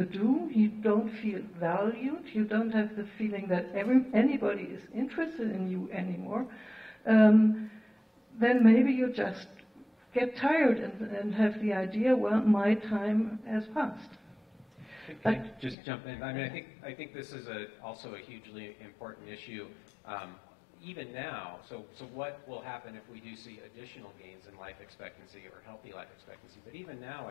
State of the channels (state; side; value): drops out; right; at 15.8 s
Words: do, you don't feel valued, you don't have the feeling that anybody is interested in you anymore, then maybe you just get tired and have the idea, well, my time has passed. Can I just jump in? I mean, I think this is also a hugely important issue, even now. So what will happen if we do see additional gains in life expectancy or healthy life expectancy? But even now,